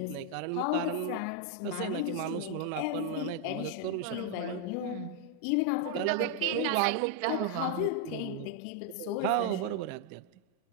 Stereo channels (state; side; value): different; both; correlation 0.00